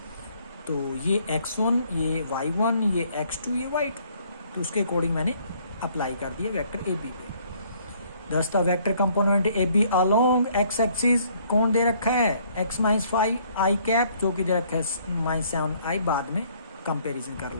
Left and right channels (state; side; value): inverted; both; correlation -0.63